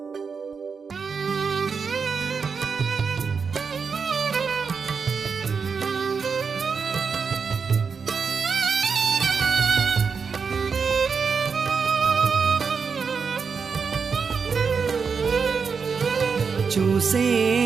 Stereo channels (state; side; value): quieter; left; 5.6 dB